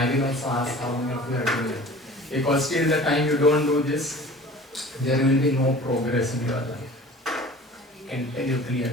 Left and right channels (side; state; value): both; normal; correlation 0.43